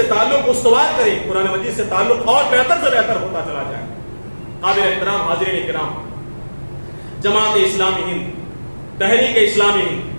تعلق استوار کریں، قرآن مجید سے تعلق اور بہتر سے بہتر ہوتا چلا جائے۔ قابل احترام حاضرین کرام، جماعت اسلامی ہند، تحریک اسلامی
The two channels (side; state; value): both; inverted; correlation -1.00